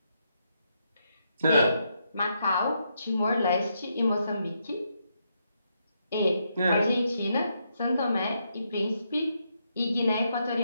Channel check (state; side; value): inverted; both; correlation -0.79